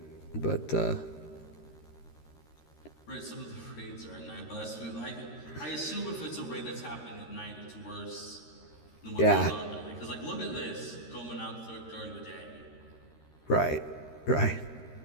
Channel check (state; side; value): late; right; 13 ms